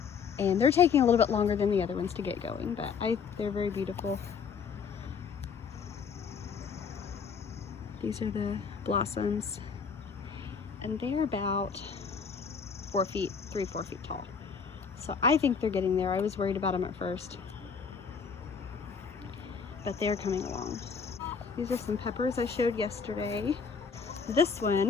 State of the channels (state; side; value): quieter; right; 6.0 dB